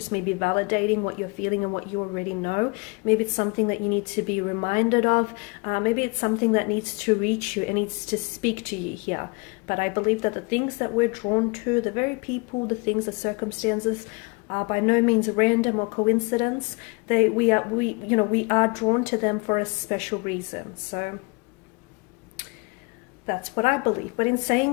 maybe validating what you're feeling and what you already know. Maybe it's something that you need to be reminded of. Maybe it's something that needs to reach you and needs to speak to you here. But I believe that the things that we're drawn to, the very people, the things, the circumstances, are by no means random or coincidence. We are drawn to them for a special reason. So that's what I believe. But in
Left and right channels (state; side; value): quieter; right; 29.1 dB